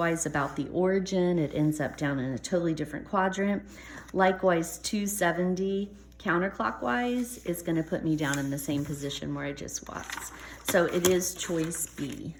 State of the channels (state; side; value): identical; both; correlation 1.00